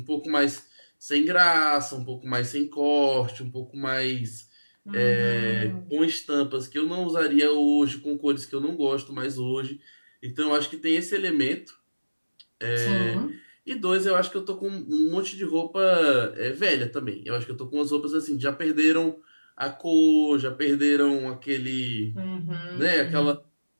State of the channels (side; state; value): both; inverted; correlation -1.00